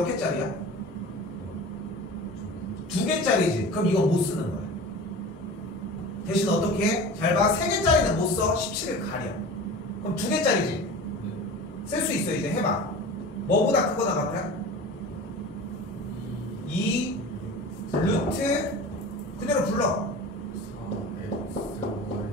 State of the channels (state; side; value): normal; both; correlation 0.36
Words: 개짜리야? 2개짜리지. 그럼 이건 못 쓰는 거야. 대신 어떻게 해? 잘 봐. 3개짜리는 못 써. 17을 가려. 그럼 2개짜리지. 쓸 수 있어. 이제 해봐. 뭐보다 크거나 같아? 2 루트 그대로 불러.